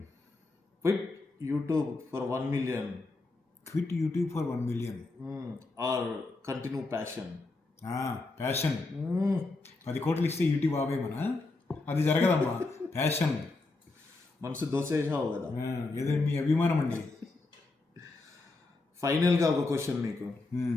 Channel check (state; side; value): quieter; right; 3.4 dB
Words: Quit YouTube for 1 million quit YouTube for 1 million. Or continue passion? Passion. 10 కోట్లు ఇస్తే YouTube ఆవే మన, అది జరగదమ్మా. Passion. మనసు దోసేసావు కదా. ఏదో మీ అభిమానం అండి. ఫైనల్గా ఒక క్వశ్చన్ మీకు.